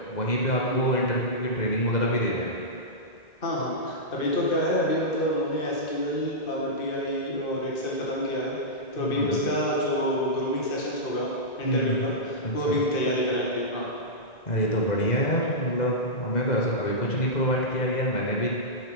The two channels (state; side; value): late; right; 1.9 ms